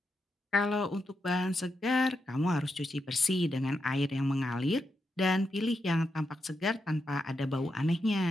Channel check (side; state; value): both; normal; correlation 0.84